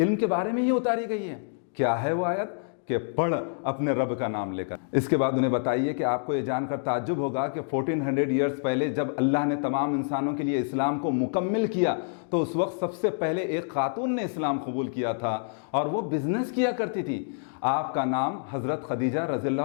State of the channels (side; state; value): right; silent; digital silence